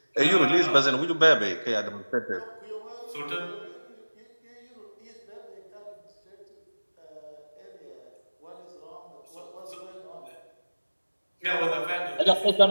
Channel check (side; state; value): both; inverted; correlation -1.00